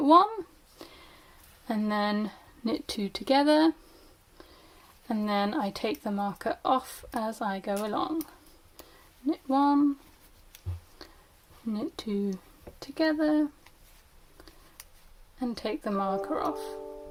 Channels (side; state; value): both; identical; correlation 1.00